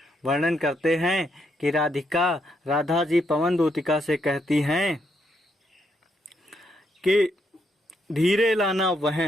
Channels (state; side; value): normal; both; correlation 0.77